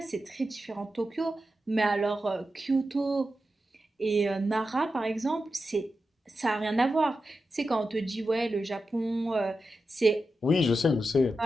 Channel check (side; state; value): both; normal; correlation 0.90